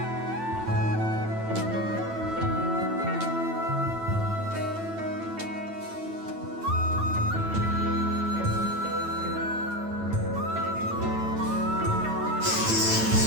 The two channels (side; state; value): left; late; 9.1 ms